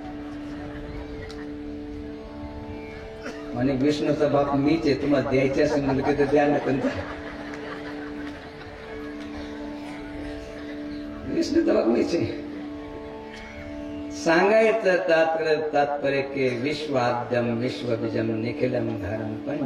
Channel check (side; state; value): both; identical; correlation 1.00